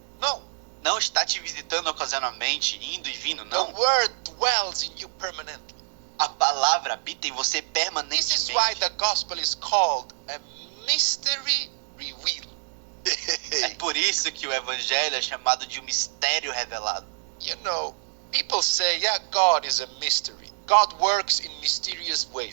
No, Não está te visitando ocasionalmente, indo e vindo, the não. word dwells in you permanently. A palavra habita em você This is permanentemente. why the gospel is called a mystery revealed. É por isso que o evangelho é chamado de um mistério revelado. You know, people say, yeah, God is a mystery. God works in mysterious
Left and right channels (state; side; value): silent; left; digital silence